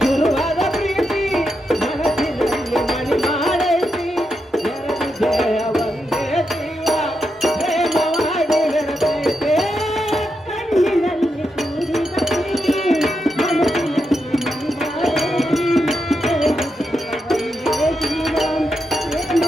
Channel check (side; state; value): both; normal; correlation 0.85